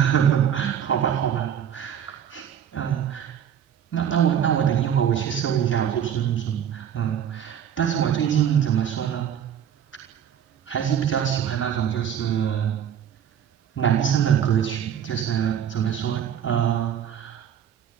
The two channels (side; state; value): left; quieter; 9.0 dB